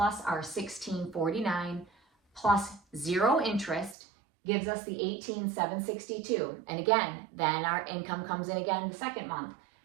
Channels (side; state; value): left; drops out; at 4.0 s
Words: our $1,649 plus 0 interest gives us the $18,762. And again, then our income comes in again the second month.